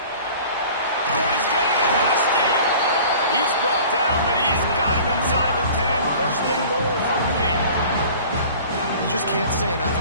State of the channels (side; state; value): both; inverted; correlation -0.45